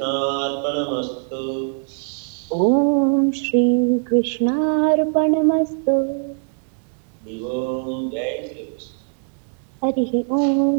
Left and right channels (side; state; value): left; silent; 61 dB below the other